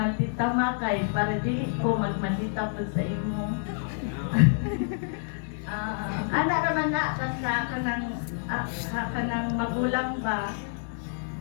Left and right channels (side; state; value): right; silent; digital silence